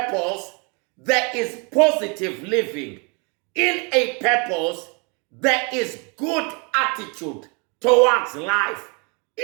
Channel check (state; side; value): quieter; left; 32.8 dB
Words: there is positive living. In a purpose, there is good attitude towards life.